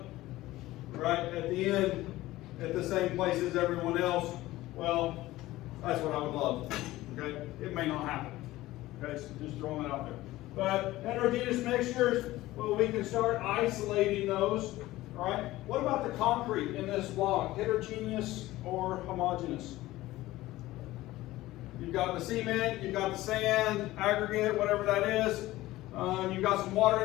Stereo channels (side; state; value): right; quieter; 17.1 dB